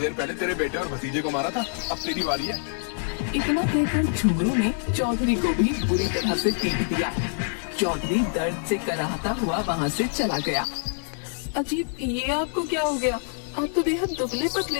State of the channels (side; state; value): right; silent; digital silence